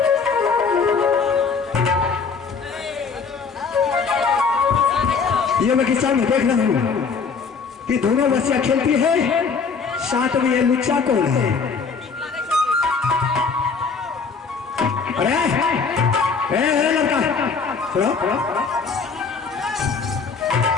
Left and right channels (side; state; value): right; quieter; 5.3 dB